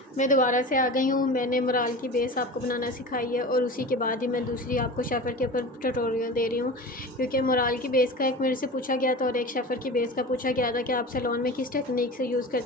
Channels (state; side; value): normal; both; correlation 0.32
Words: मैं दोबारा से आ गई हूँ। मैंने मोराल की बेस आपको बनाना सिखाई है और उसी के बाद ही मैं दूसरी आपको शेफ़र के ऊपर ट्यूटोरियल दे रही हूँ, क्योंकि मोराल की बेस का एक मेरे से पूछा गया था और एक शेफ़र की बेस का पूछा गया था कि आप सैलून में किस टेक्निक से यूज़